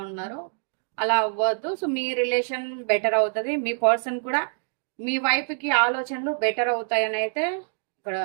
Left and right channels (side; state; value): left; silent; digital silence